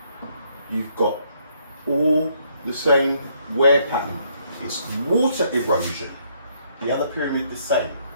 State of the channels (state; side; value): inverted; both; correlation -0.70